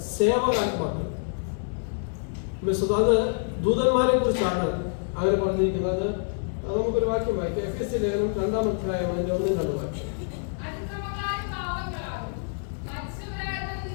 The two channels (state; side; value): silent; right; digital silence